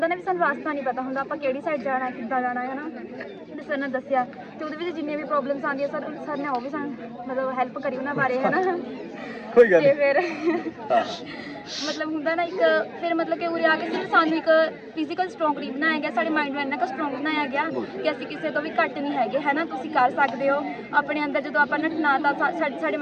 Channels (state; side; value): identical; both; correlation 1.00